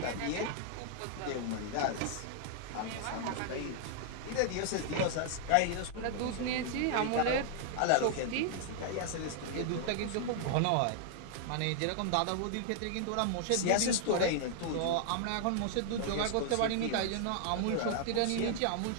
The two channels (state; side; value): different; both; correlation -0.01